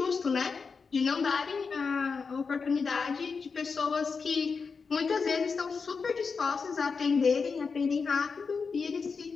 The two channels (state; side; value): quieter; right; 5.1 dB